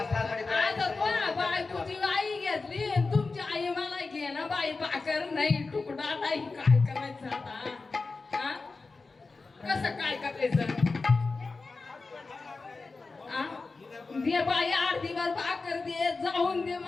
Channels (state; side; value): quieter; right; 4.0 dB